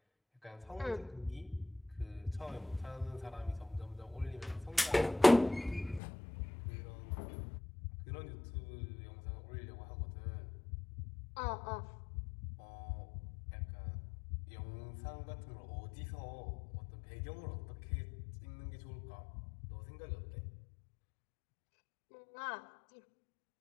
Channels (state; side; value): drops out; right; at 6.0 s